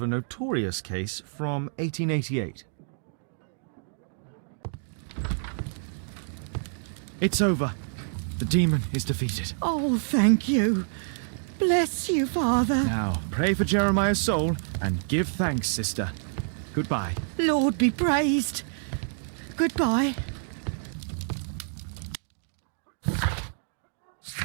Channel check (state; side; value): silent; left; digital silence